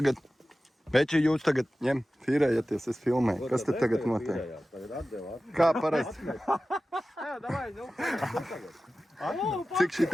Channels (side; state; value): both; normal; correlation 0.95